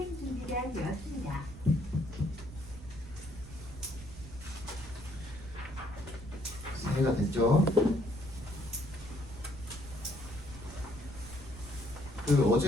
준비가 되었습니다. 이해가 됐죠?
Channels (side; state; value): right; noise; rumble, 14 dB below the sound